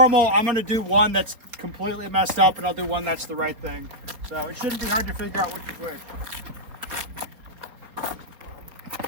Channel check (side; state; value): left; late; 4.3 ms